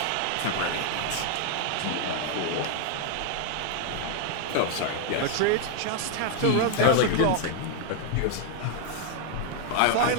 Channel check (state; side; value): different; both; correlation 0.00